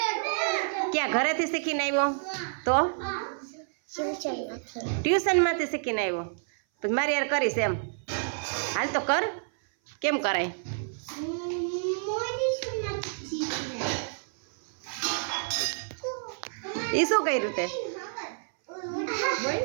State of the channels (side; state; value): left; silent; 57 dB below the other